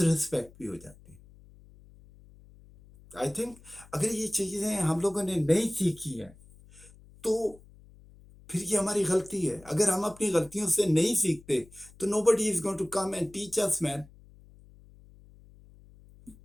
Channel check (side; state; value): left; noise; hum, 24 dB below the sound